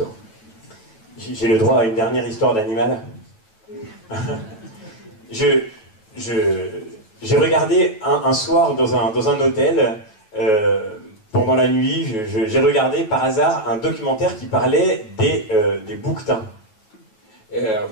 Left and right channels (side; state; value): right; late; 9.2 ms